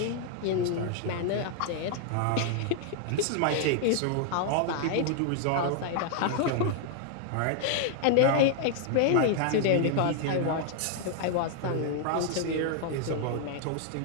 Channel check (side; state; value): both; different; correlation 0.00